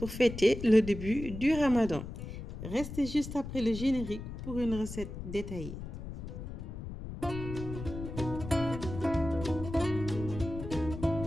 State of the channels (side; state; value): left; noise; rumble, 9 dB below the sound